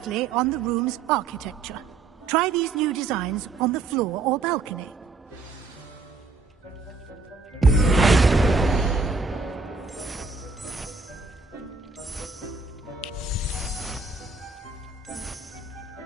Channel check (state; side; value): quieter; left; 3.9 dB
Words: on the room's architecture. Try these new designs on the floor or balcony.